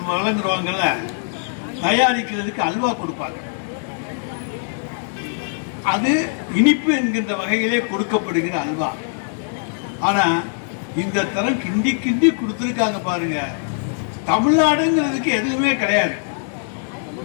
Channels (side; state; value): right; silent; digital silence